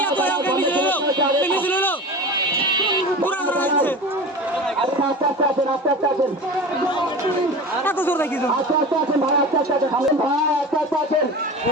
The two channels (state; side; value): normal; both; correlation 0.32